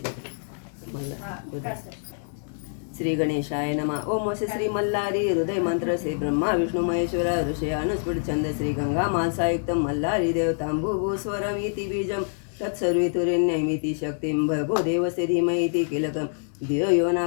मल्हार. श्री गणेशाय नमः. ओम वसे श्री मल्हारी हृदय मंत्र से ब्रह्मा विष्णु महेश्वरा ऋषय अनुस्फुट छंद श्री गंगा मानसायुक्त मल्हारी देवतांबुभू स्वरमिति बीजम तत्सर्वेतुरेण्यमिति शक्तिं भर्गो देवस्य धीमहि किलकं धियो यो न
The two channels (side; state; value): right; silent; digital silence